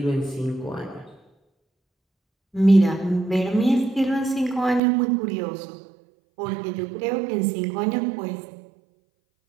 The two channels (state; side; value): drops out; left; at 4.8 s